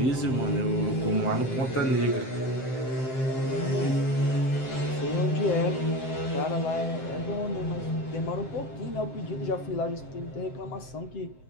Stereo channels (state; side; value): late; right; 7.6 ms